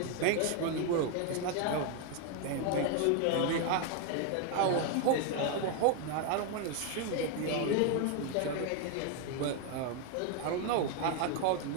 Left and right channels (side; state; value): both; different; correlation 0.01